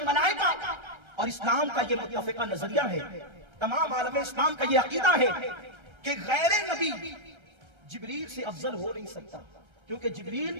اور اسلام کا یہ متفقہ نظریہ ہے، تمام عالم اسلام کا یہ عقیدہ ہے کہ غیر نبی جبریل سے افضل ہو نہیں سکتا، کیونکہ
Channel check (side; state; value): left; late; 1.3 ms